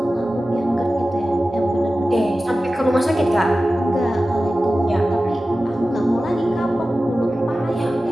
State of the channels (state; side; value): normal; both; correlation 0.95